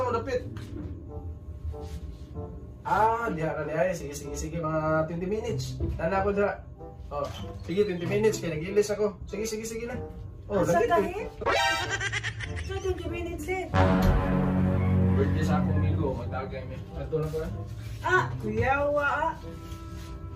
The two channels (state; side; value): identical; both; correlation 1.00